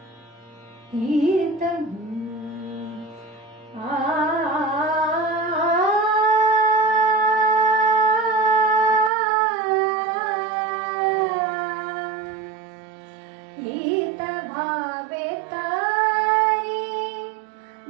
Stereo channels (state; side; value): drops out; left; at 9.1 s